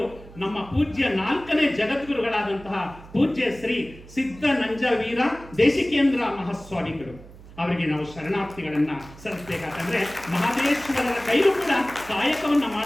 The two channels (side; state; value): right; noise; hum, 19 dB below the sound